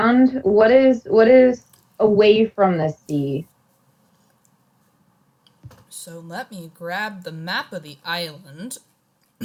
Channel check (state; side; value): identical; both; correlation 1.00